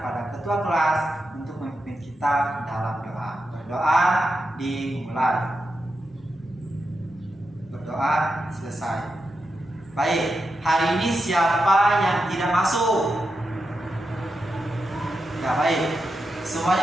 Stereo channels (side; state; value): both; normal; correlation 0.88